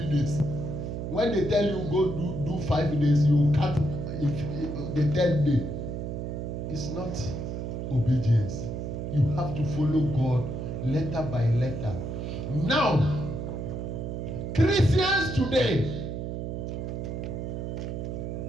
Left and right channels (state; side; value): noise; right; hum, 4 dB below the sound